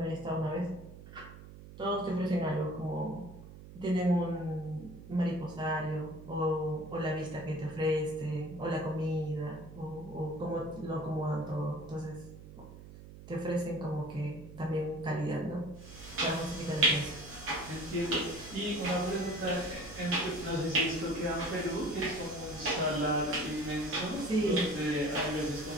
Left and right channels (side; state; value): right; noise; hum, 15 dB below the sound